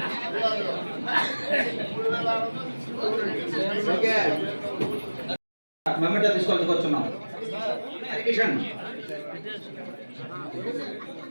మెమెంటో తీసుకొచ్చుకొచ్చున్నాం. కిషన్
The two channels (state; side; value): inverted; both; correlation -1.00